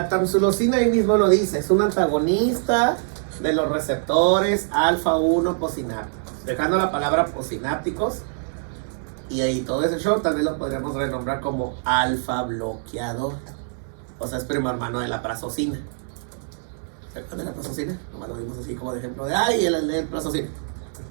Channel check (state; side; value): silent; left; digital silence